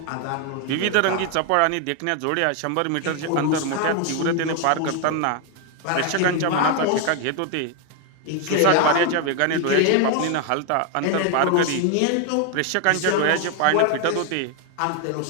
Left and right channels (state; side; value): different; both; correlation 0.01